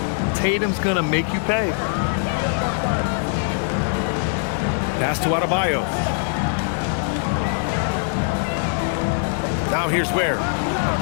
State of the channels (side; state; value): right; silent; digital silence